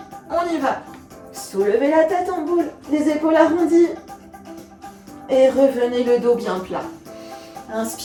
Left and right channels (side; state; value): both; identical; correlation 1.00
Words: On y va. Soulevez la tête en boule, les épaules arrondies et revenez le dos bien plat.